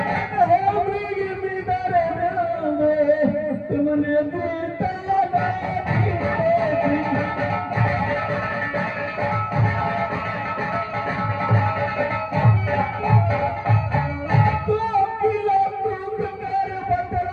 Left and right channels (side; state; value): both; identical; correlation 1.00